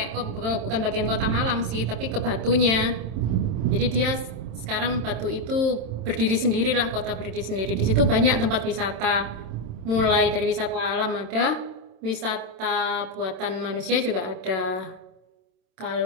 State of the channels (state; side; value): late; left; 27 ms